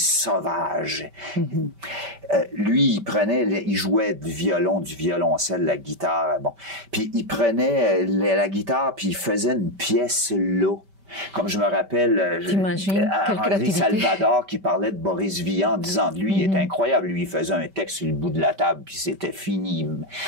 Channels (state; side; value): late; left; 5.1 ms